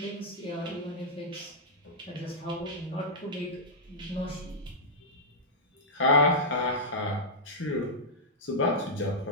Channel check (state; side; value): normal; both; correlation -0.09